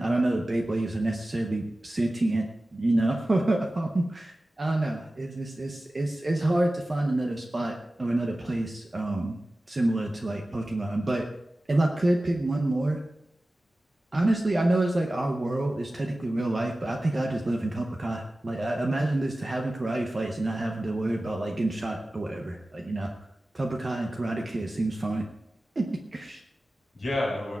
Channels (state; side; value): normal; both; correlation 0.96